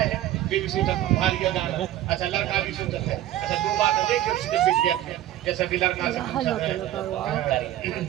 हैं, बेबी सोचा था भारी जाना, अच्छा लड़का भी सोचा था, अच्छा 2 बात देखिए उसके पीछे जैसा कि लड़का से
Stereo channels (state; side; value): quieter; left; 13.4 dB